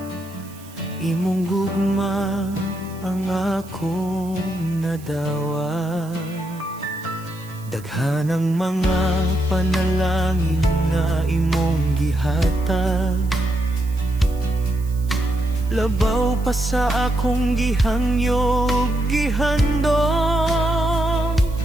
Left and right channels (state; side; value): noise; right; hiss, 22 dB below the sound